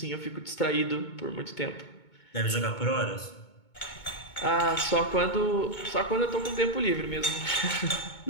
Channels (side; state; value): right; late; 2.2 ms